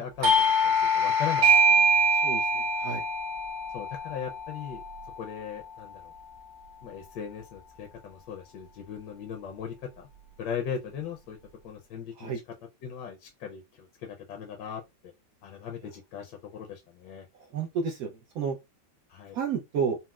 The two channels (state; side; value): normal; both; correlation 0.41